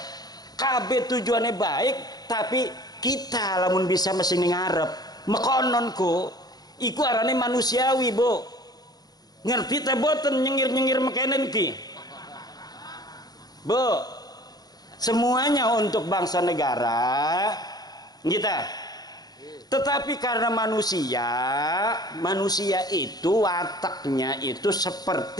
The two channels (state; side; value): late; right; 0.19 ms